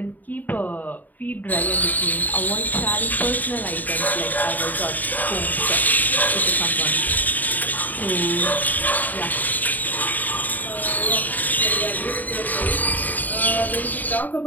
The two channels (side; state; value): right; late; 0.084 ms